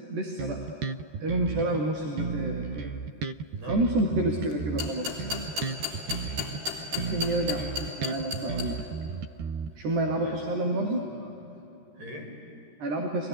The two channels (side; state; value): left; late; 13 ms